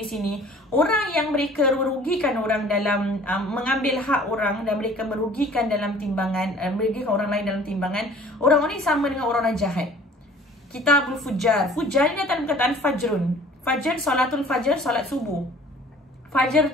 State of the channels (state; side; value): normal; both; correlation 0.50